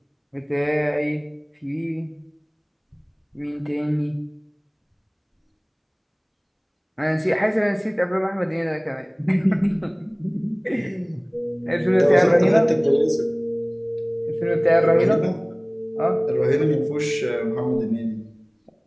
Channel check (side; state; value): both; identical; correlation 1.00